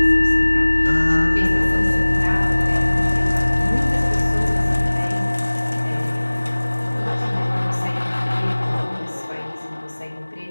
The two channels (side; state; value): both; inverted; correlation -1.00